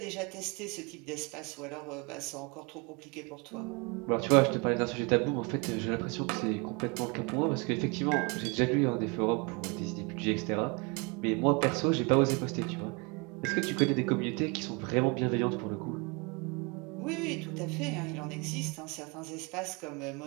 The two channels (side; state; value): left; quieter; 30.2 dB